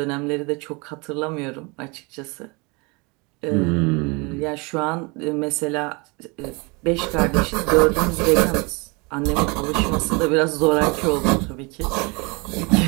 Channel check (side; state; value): left; quieter; 28.8 dB